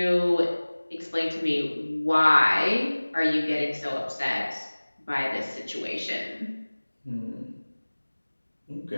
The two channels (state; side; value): inverted; both; correlation -1.00